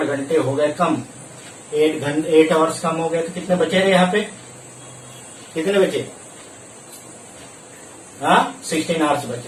घंटे हो गए कम, 8 आवर्स कम हो गए, तो कितने बचे रहे यहाँ पे? कितने बचे? हाँ 16 आवर्स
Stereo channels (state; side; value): identical; both; correlation 1.00